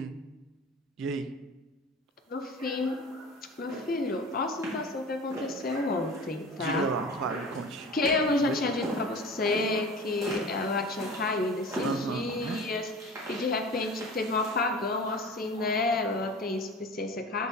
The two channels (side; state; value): both; normal; correlation 0.37